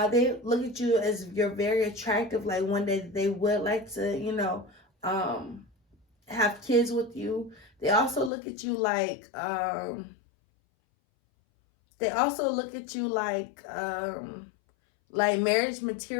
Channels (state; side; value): drops out; right; at 8.3 s